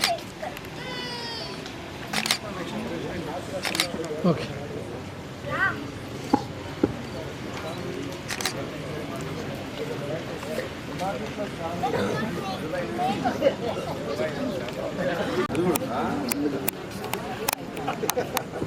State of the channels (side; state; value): both; identical; correlation 1.00